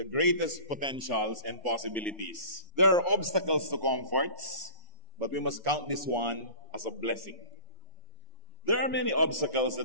greatest potentials and possibilities. There are obstacles to comforts, but we must count this one as a blessing. There are many obstacles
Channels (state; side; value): late; left; 1.1 ms